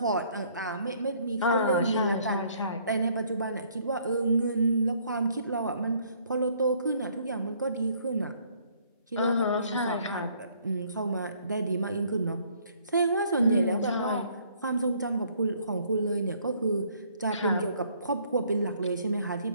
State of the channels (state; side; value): inverted; both; correlation -0.63